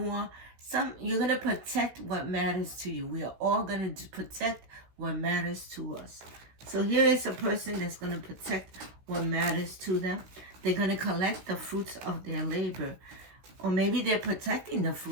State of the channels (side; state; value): left; late; 16 ms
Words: You're going to protect what matters to you. We are all going to protect what matters to us. So here is a person that's going to protect what matters to them. They're going to collect the fruits of their labor. Or maybe they're protecting the